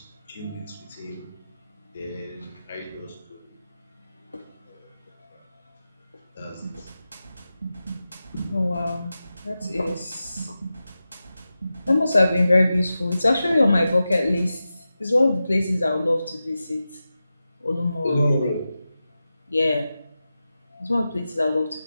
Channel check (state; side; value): inverted; both; correlation -0.93